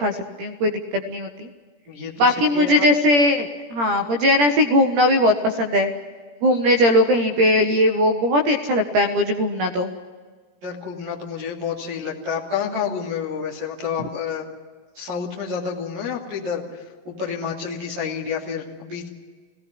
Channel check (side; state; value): left; late; 17 ms